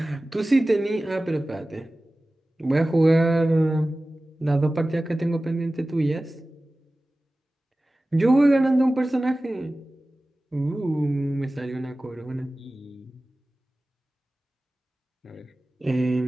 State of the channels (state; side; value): normal; both; correlation 0.97